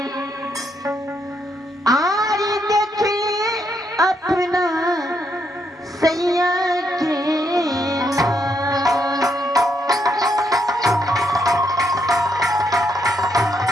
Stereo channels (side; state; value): both; normal; correlation 0.77